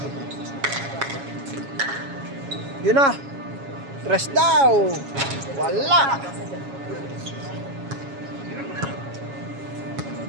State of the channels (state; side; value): late; left; 7.2 ms